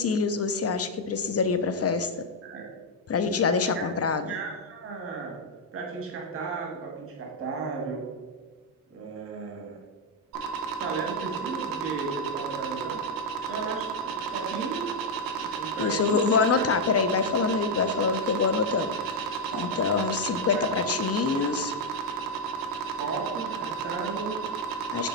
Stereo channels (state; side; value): normal; both; correlation 0.01